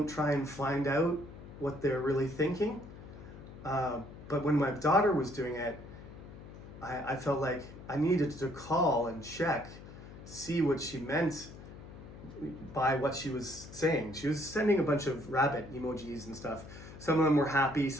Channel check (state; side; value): noise; left; hum, 15 dB below the sound